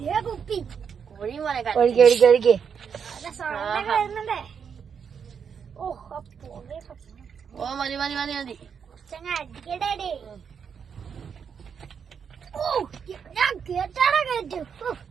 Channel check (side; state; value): left; quieter; 6.9 dB